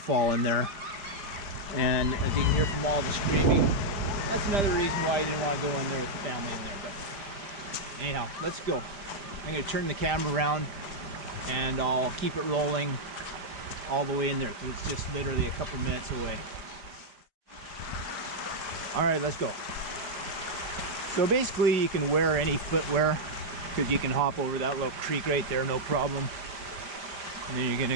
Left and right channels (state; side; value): late; left; 5.0 ms